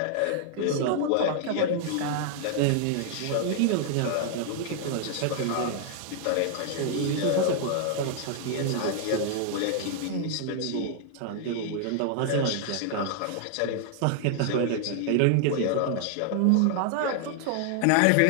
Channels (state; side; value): different; both; correlation 0.00